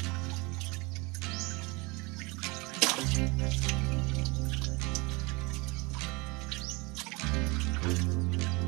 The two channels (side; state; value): left; quieter; 26.4 dB